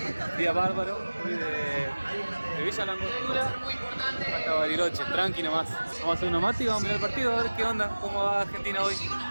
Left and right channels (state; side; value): inverted; both; correlation -1.00